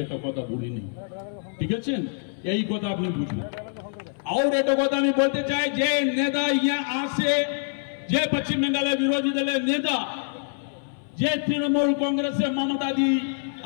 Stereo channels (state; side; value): silent; right; 60 dB below the other